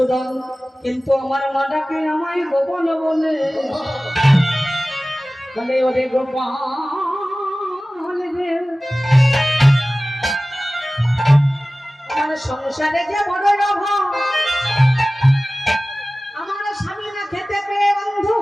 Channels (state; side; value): normal; both; correlation 0.97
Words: কিন্তু আমার মাটাকে আমায় গোপন বলে বলে ওরে গোপাল রে। আমার সংসারে যে বড় অভাব, আমার স্বামী না খেতে পেয়ে অন্ধ